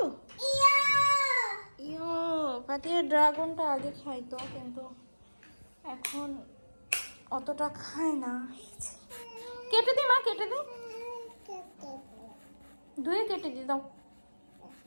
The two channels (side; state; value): both; inverted; correlation -1.00